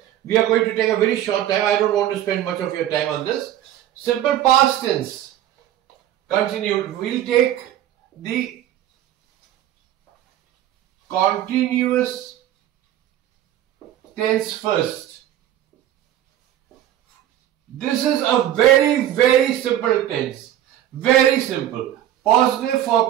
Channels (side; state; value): left; quieter; 12.1 dB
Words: We are going to take a very short time. I don't want to spend much of your time on this. Simple past tense continued. We'll take the continuous tense first. This is a very, very simple tense. Very simple. Positive